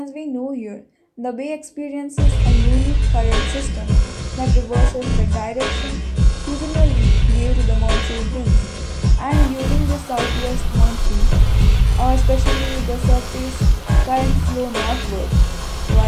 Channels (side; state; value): both; identical; correlation 1.00